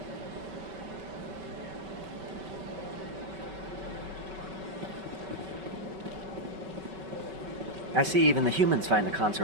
I see even the humans find the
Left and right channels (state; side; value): late; left; 5.2 ms